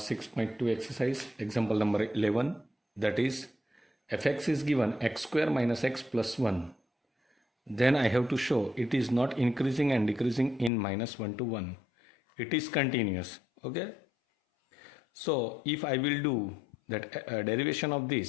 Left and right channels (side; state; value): right; drops out; at 10.7 s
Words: exercise, example number 11, that is fx is given x square minus x plus 1. Then I have to show it is not increasing and decreasing in minus 1 to 1. It is continuous. Okay. So if I will do that derivation of